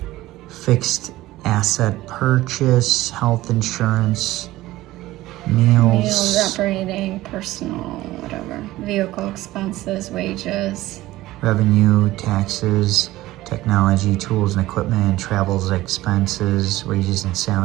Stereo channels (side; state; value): left; quieter; 16.9 dB